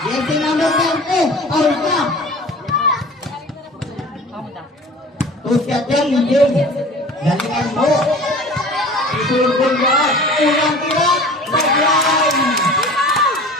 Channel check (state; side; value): normal; both; correlation 0.42